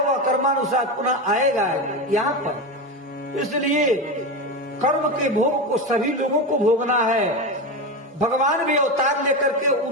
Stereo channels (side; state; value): both; normal; correlation 0.18